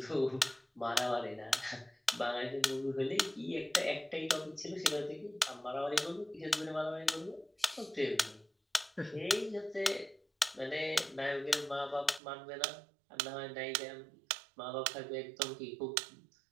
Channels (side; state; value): left; drops out; at 12.2 s